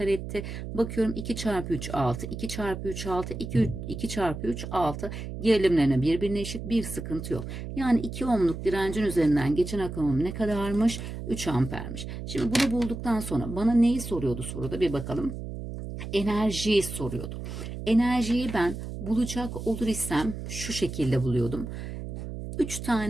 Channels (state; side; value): noise; right; hum, 8 dB below the sound